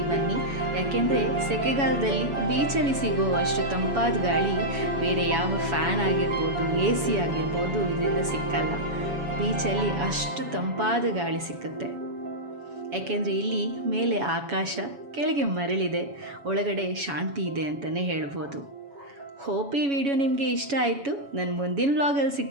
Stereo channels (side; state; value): left; late; 7.1 ms